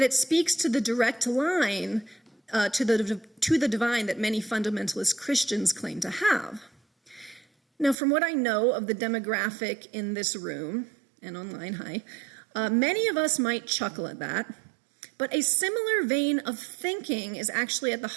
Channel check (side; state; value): left; drops out; at 8.0 s